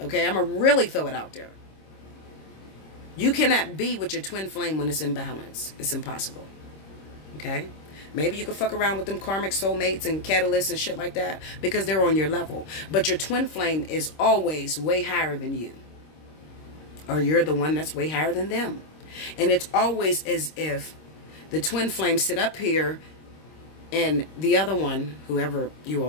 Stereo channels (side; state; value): right; late; 26 ms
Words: I'm going to really throw it out there. You cannot be with your twin flame when it's in balance. It's impossible. Okay? Maybe you can fuck around with them karmic soulmates and catalysts and shit like that because they're on your level. But your twin flame is always way higher than you. Or you're the one that's way higher than them. And it's always as if the twin flame sit up here and the other one, whoever you